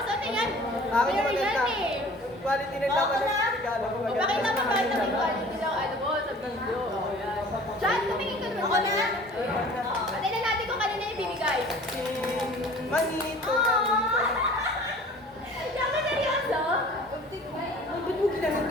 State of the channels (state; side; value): normal; both; correlation 0.46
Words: Ano yan? Akin Merry yan maganda. eh. Quality ng laman ng regalo ko. O bakit naman ba ito may quality lang ano mo sa video? O yan. Chan, tumingin ka naman. Ako na. Patay na natin kung kanina yung bibigay. Manito. Yan ka seryoso? Ay, ba't mo ginanong